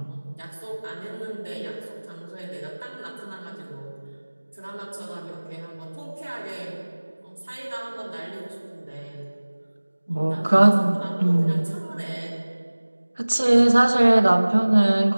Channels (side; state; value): both; inverted; correlation -1.00